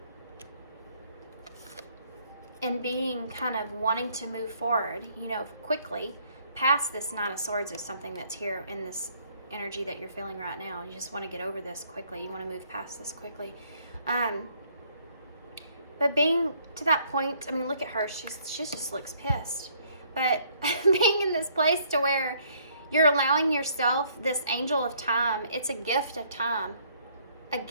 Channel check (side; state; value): both; inverted; correlation -0.65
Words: And being kind of wanting to move forward, you know, quickly past this Nine of Swords is something that's here in this energy that you're feeling right now. You just want to get over this quickly. You want to move past this quickly. But being to that point, I mean, look at her. She just looks pissed. But being in this place to where you're allowing yourself this angel of time, it's a gift of time. A